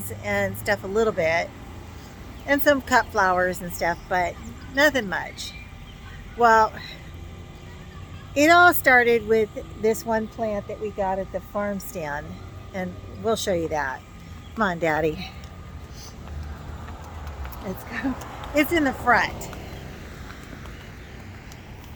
and stuff a little bit, and some cut flowers and stuff, but nothing much. Well, it all started with this one plant that we got at the farm stand, and we'll show you that. Come on, Daddy. Let's go. It's in the front.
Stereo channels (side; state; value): both; identical; correlation 1.00